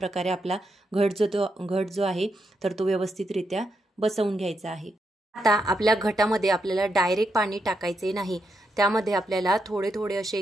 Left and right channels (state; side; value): normal; both; correlation 0.82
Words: आपला घट जो आहे तर तो व्यवस्थितरित्या बसवून घ्यायचा आहे। आता आपल्या घटामध्ये आपल्याला डायरेक्ट पाणी टाकायचे नाही, त्यामध्ये आपल्याला थोडे थोडे असे